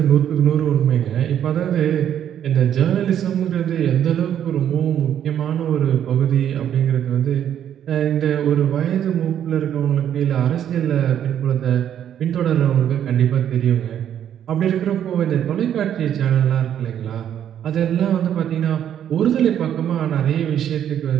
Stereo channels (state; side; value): quieter; left; 9.9 dB